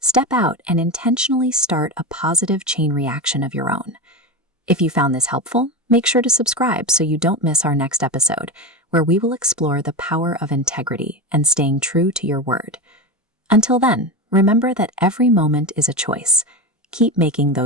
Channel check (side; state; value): both; normal; correlation 0.19